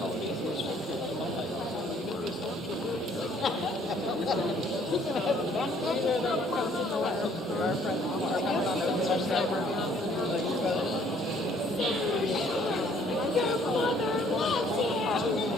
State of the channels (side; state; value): both; normal; correlation 0.61